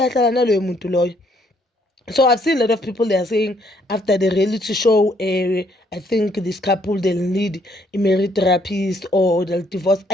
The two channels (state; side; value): normal; both; correlation 0.68